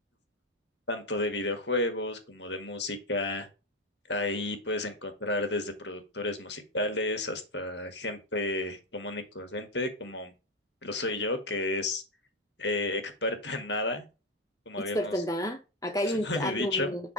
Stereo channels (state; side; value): normal; both; correlation 0.09